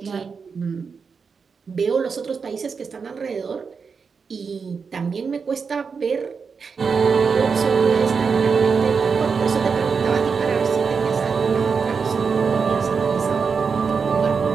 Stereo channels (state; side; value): quieter; left; 5.5 dB